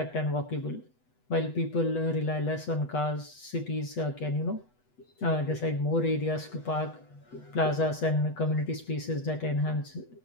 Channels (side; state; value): right; late; 8.2 ms